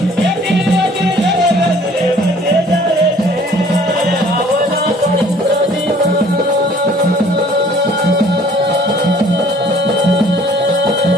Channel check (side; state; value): both; normal; correlation 0.55